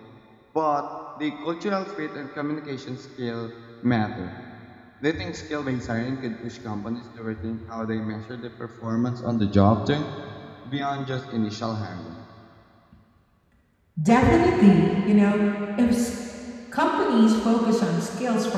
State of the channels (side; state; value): both; identical; correlation 1.00